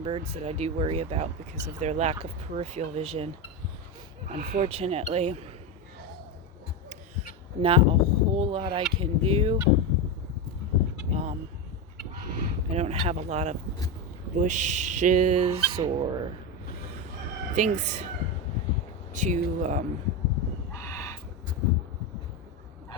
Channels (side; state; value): both; normal; correlation 0.14